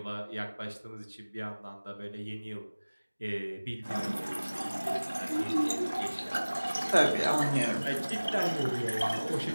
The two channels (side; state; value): both; inverted; correlation -1.00